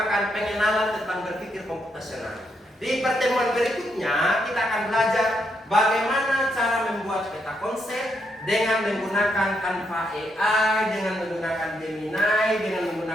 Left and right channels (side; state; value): both; normal; correlation 0.79